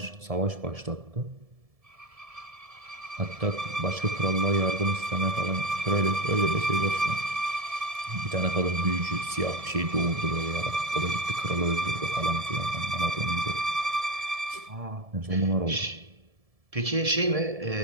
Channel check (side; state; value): left; late; 1.7 ms